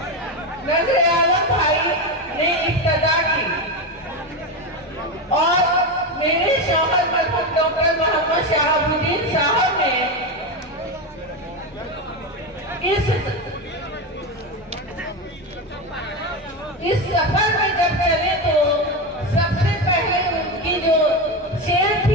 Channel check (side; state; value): both; normal; correlation 0.15